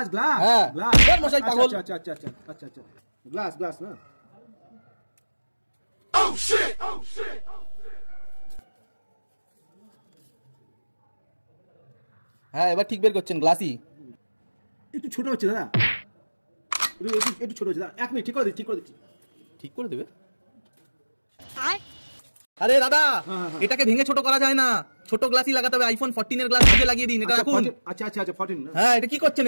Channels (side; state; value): both; inverted; correlation -1.00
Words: গ্লাস হ্যাঁ গ্লাস। ওর মশাই পাগল। আচ্ছা আচ্ছা আচ্ছা আচ্ছা আচ্ছা আচ্ছা গ্লাস গ্লাস না? হ্যাঁ এবার ঠিক বের করছেন, গ্লাসই। একটু ছোট হচ্ছে দাদা, একটু ছোট হচ্ছে দাদা। 1 মিনিট ঠিক করে দিচ্ছি ঠিক করে দিচ্ছি। ঠিক করে দেবে? আরে দাদা এটাকে ভেঙে ছোট করা যায় না, ছোট গ্লাসই লাগাতে হবে। আইফোন 14 এর গ্লাস ভেঙে লাগিয়ে দিন, এটা রাখুন। আচ্ছা আচ্ছা আচ্ছা 14 না? হ্যাঁ এটা কি করছেন